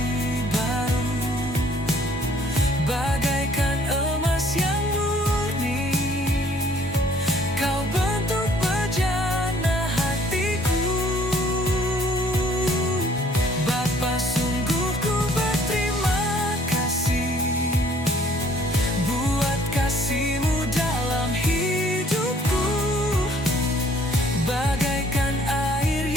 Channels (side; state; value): both; normal; correlation 0.60